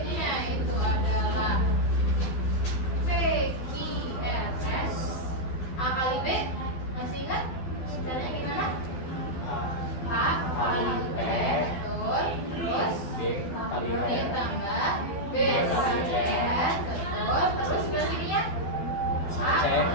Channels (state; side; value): late; right; 12 ms